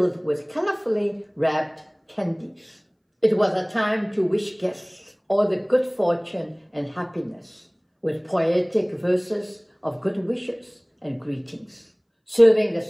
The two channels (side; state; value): both; identical; correlation 1.00